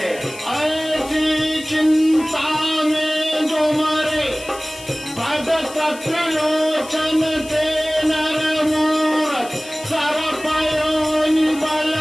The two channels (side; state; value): left; noise; hiss, 17 dB below the sound